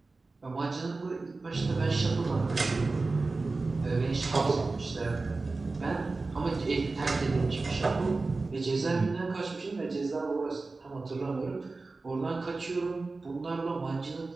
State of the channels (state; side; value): quieter; left; 3.6 dB